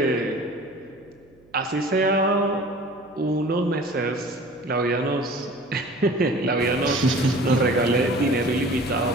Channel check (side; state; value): right; noise; hum, 30 dB below the sound